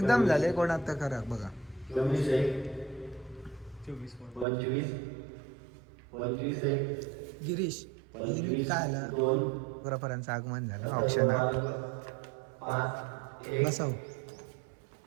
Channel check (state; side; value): drops out; left; at 4.5 s